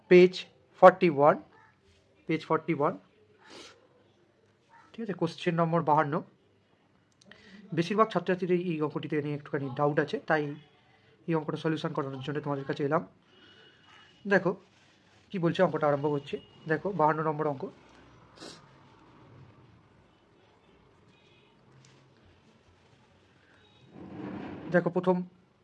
পেজ 41, ঠিক আছে। Question number 52। বেশিরভাগ ছাত্রছাত্রীদের এই অঙ্কটিতে নিয়ে একটুখানি ডাউট আছে, তাই এই অঙ্কটা সলিউশন করানোর জন্য তোমাদের কাছে এলাম। দেখো কি বলছে, অঙ্কটা আরম্ভ করছে। দেখো 52 নম্বর অঙ্ক। দেখো প্রথম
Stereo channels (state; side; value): identical; both; correlation 1.00